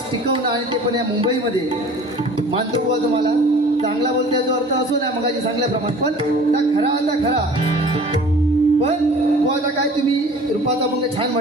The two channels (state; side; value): normal; both; correlation 0.46